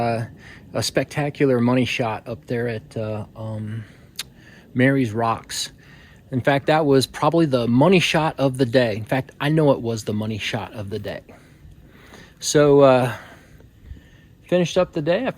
spectacular money shot up there at Mary's Rocks. In fact, that was probably the money shot of the day. In fact, I know it was the money shot of the day. So finished up the day. I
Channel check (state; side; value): identical; both; correlation 1.00